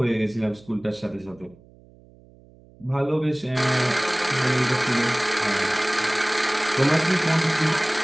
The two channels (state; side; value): noise; right; hum, 26 dB below the sound